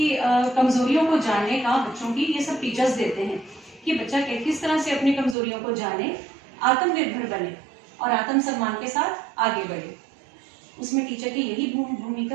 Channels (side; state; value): left; drops out; at 5.4 s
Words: कमज़ोरियों को जानने का बच्चों की ये सब टीचर्स देते हैं कि बच्चा किस तरह से अपनी कमज़ोरियों को जाने, आत्मनिर्भर बने और आत्मसम्मान के साथ आगे बढ़े। उसमें टीचर की यही